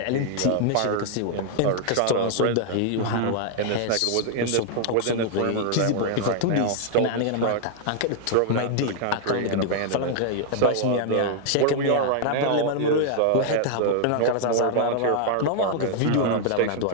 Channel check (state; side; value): different; both; correlation -0.01